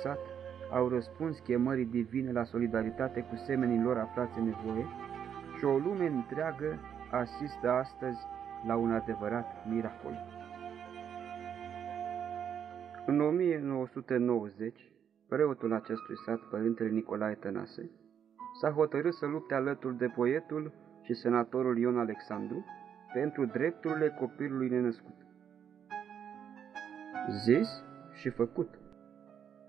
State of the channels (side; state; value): left; quieter; 8.4 dB